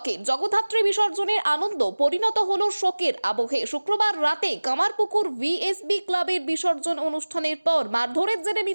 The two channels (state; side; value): inverted; both; correlation -1.00